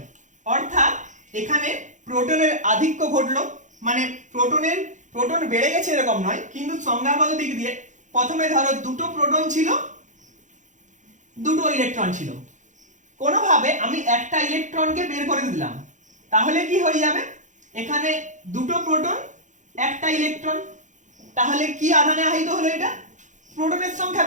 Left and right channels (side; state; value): left; late; 0.36 ms